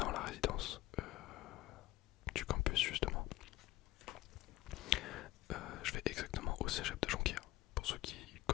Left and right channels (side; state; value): right; quieter; 17.3 dB